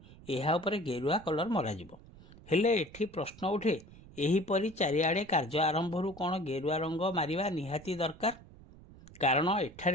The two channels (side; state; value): right; noise; rumble, 20 dB below the sound